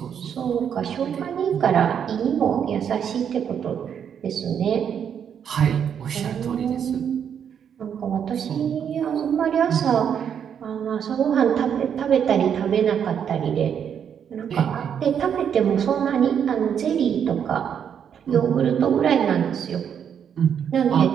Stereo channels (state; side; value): quieter; left; 8.2 dB